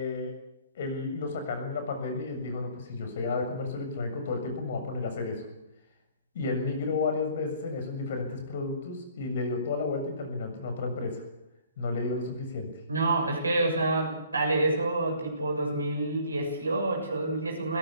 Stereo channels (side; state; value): both; inverted; correlation -0.56